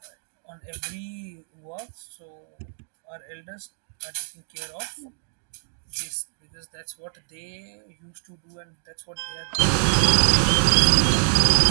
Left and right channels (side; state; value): left; silent; digital silence